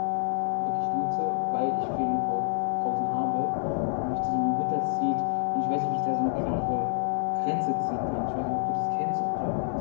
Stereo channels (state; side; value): silent; right; digital silence